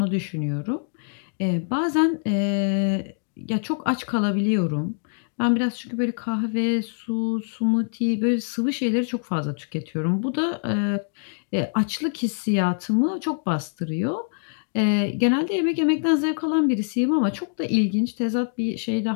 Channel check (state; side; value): silent; right; digital silence